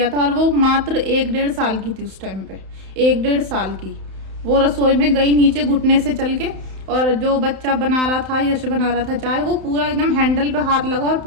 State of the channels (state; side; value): late; left; 31 ms